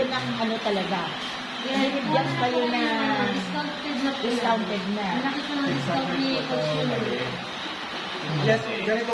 ng ano talaga. Binigyan kayo na discounted na. Yes, ganito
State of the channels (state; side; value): identical; both; correlation 1.00